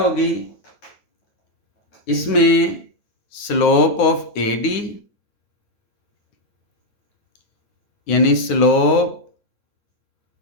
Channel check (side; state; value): right; late; 9.7 ms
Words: इसमें स्लोप ऑफ AD यानी स्लोप